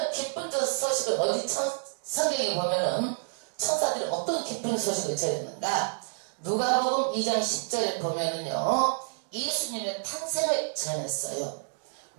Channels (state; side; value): silent; left; digital silence